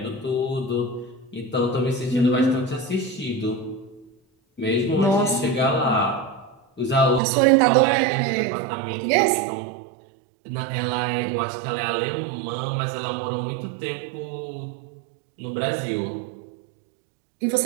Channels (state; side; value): drops out; left; at 7.2 s